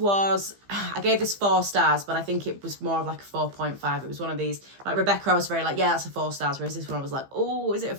gave this 4 stars, but I think it was more of like a 4.5. It was one of these, like Rebecca, I was very like, yeah, that's a 4 stars, whereas this one I was like, oh, is it a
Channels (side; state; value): left; late; 15 ms